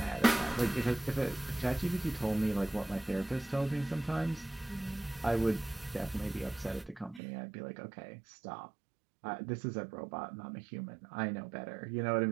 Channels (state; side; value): drops out; left; at 7.2 s